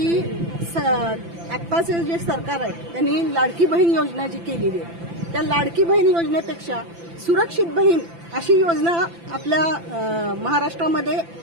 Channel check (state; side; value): late; left; 5.9 ms